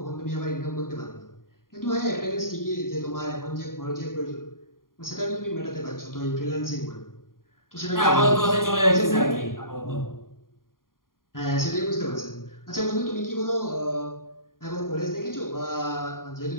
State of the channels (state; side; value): late; right; 0.91 ms